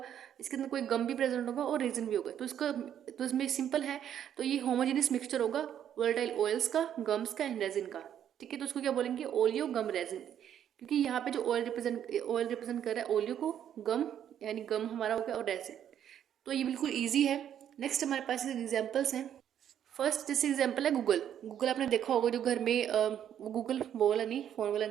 इसके अंदर कोई गम भी प्रेजेंट होगा और रेजिन भी होगा, तो इसका, तो इसमें सिंपल है, तो ये होमोजेनियस मिक्सचर होगा वोलेटाइल ऑयल्स का, गम्स का एंड रेजिन का, ठीक है। तो उसको क्या बोलेंगे? ओलियो गम रेजिन, क्योंकि यहाँ पे जो ऑयल रिप्रेजेंट कर रहा है ओलियो को, गम यानी गम हमारा हो गया, और रेजिन। तो ये बिल्कुल ईजी है। नेक्स्ट हमारे पास एग्जाम्पल्स हैं। फर्स्ट जैसे एग्जाम्पल है गूगल। गूगल आपने देखा होगा, जो घर में गूगल वो वाला नहीं, फोन वाला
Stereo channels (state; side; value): quieter; left; 9.8 dB